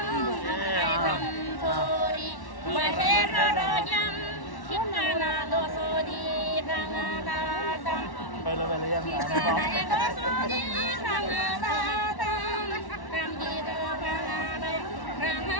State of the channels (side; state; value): right; late; 1.1 ms